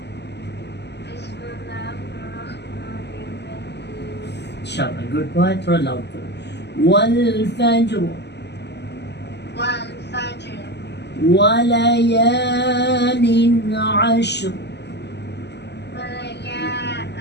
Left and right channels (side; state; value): right; late; 0.50 ms